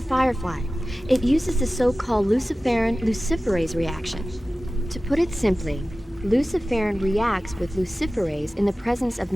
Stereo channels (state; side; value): normal; both; correlation 0.96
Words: firefly. It uses the so-called luciferin luciferase reaction. To put it simply, luciferin reacts with luciferase in the presence of